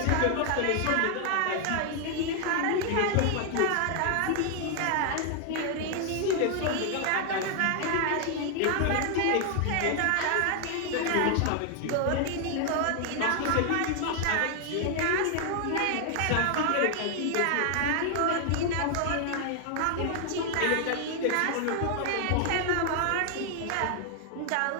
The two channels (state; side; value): different; both; correlation 0.00